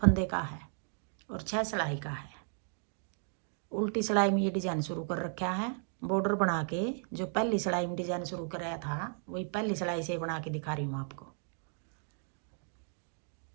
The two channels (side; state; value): left; silent; 55 dB below the other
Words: का है और 6 सिलाई का है। उल्टी सिलाई में ये डिज़ाइन शुरू कर रखा है। बॉर्डर बना के जो पहली सिलाई में डिज़ाइन शुरू कराया था वही पहली सिलाई से बना के दिखा रही हूँ आपको।